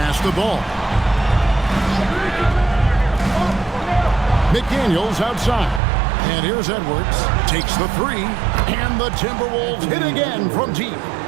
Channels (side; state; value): left; drops out; at 5.8 s